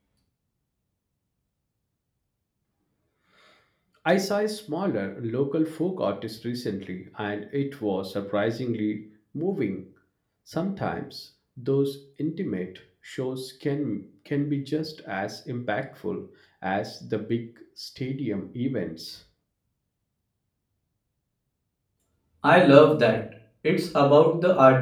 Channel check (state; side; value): identical; both; correlation 1.00